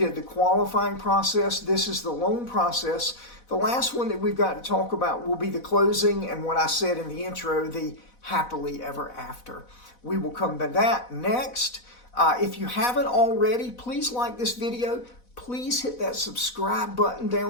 the qualifying process. This is the loan process. The last one that we've got to talk about will be the closing and what I said in the intro, the happily ever after. We will come to that next. If you haven't already, please like this video. Please hit that subscribe button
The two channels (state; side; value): late; right; 4.1 ms